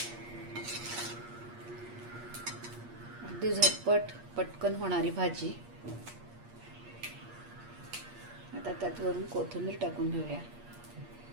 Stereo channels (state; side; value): late; left; 8.5 ms